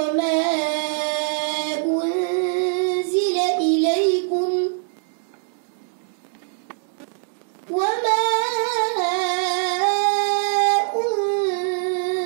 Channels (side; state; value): left; silent; 64 dB below the other